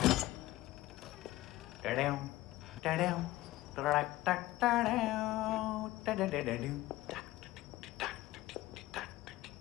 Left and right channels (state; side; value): quieter; right; 17.1 dB